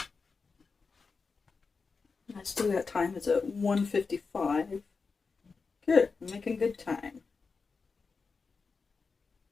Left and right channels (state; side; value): quieter; right; 4.7 dB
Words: still got time. It's at 1:55. Good. I'm making good time.